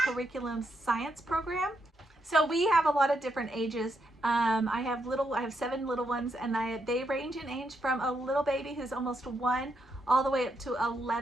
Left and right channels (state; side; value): normal; both; correlation 0.80